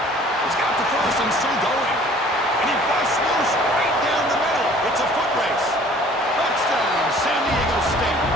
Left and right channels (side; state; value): both; normal; correlation 0.52